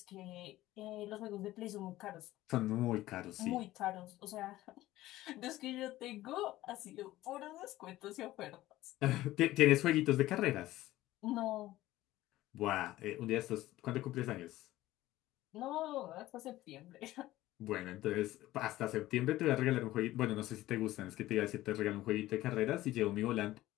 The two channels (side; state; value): right; quieter; 16.1 dB